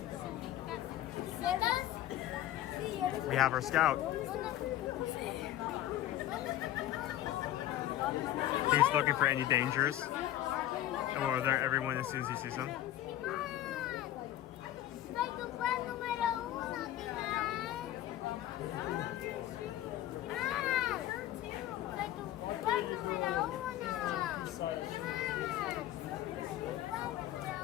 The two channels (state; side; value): quieter; right; 13.2 dB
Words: we have our scout. He's looking for any dangers, or there everyone as soon as he sees them.